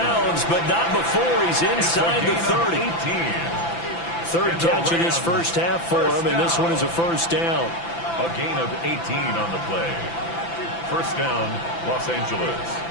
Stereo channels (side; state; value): right; late; 5.9 ms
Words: but not before he's inside the 30. 3rd catch of this first half for him, and this one is a first down. A gain of 18 on the play. First down, Los Angeles.